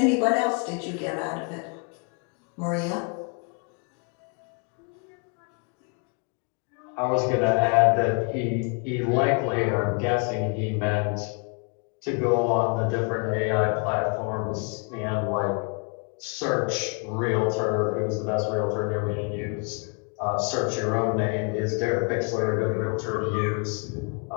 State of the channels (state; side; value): quieter; right; 35.8 dB